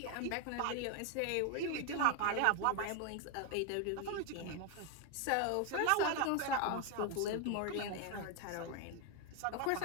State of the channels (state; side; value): different; both; correlation 0.01